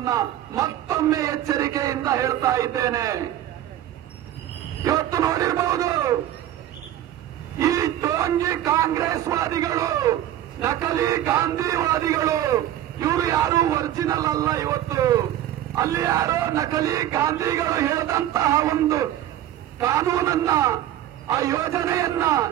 ಮತ್ತೊಮ್ಮೆ ಎಚ್ಚರಿಕೆಯಿಂದ ಹೇಳ್ತಾ ಇದ್ದೇನೆ. ಇವತ್ತು ನೋಡಿರಬಹುದು, ಈ ಟೋಂಗಿ ಕಾಂಗ್ರೆಸ್ವಾದಿಗಳು, ನಕಲಿ ಗಾಂಧಿವಾದಿಗಳು, ಇವರು ಯಾರು ಒರಿಜಿನಲ್ ಅಲ್ಲ. ಇವತ್ತು ಅಲ್ಲಿ ಯಾರೋ ನಕಲಿ ಗಾಂಧಿಗಳು ಹೇಳಿದಂತಹ ಒಂದು ಕಾನೂನನ್ನ, ಆ ಯೋಜನೆಯನ್ನ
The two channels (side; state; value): left; quieter; 12.3 dB